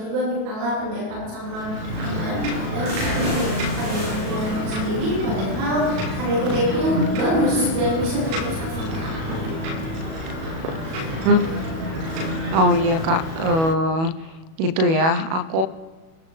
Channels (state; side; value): late; left; 37 ms